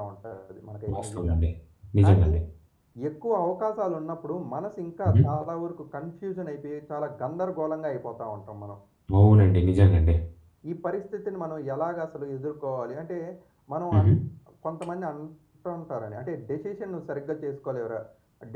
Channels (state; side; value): identical; both; correlation 1.00